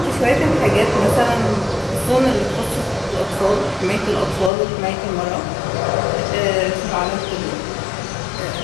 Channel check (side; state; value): right; drops out; at 4.5 s